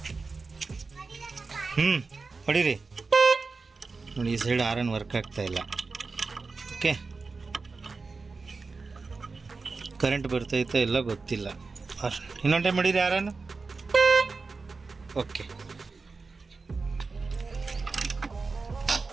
ಹೊಡೀರಿ. ನೋಡಿ, ಈ ಸೈಡ್ ಹಾರನ್ ವರ್ಕ್ ಆಗ್ತಾ ಇಲ್ಲ. ಓಕೆ, ಕರೆಂಟ್ ಬರ್ತೈತೆ ಇಲ್ಲ ಗೊತ್ತಿಲ್ಲ. ಇನ್ನೊಂದು ಟೈಮ್ ಹೊಡೀರಿ ಹಾರನ್. ಓಕೆ,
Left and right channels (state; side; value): quieter; left; 4.2 dB